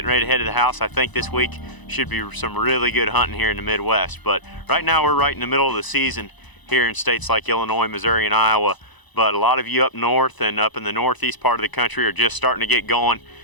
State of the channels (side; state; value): right; late; 1.0 ms